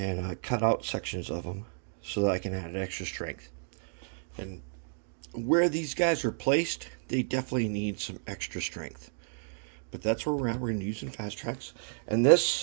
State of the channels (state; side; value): silent; left; digital silence